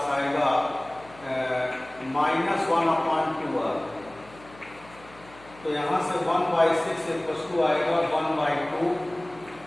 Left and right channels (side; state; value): left; noise; hum, 23 dB below the sound